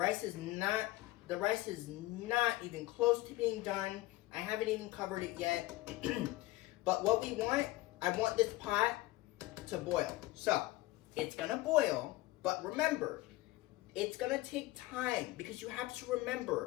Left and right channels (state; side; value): quieter; right; 18.7 dB